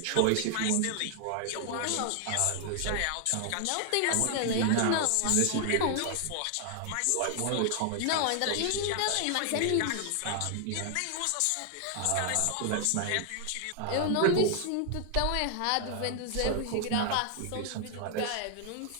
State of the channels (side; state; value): both; different; correlation 0.00